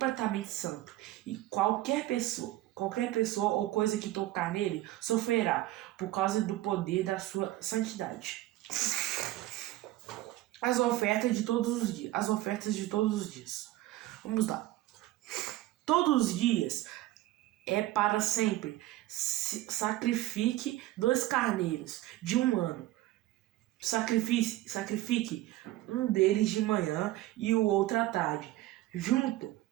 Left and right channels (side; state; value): left; quieter; 16.2 dB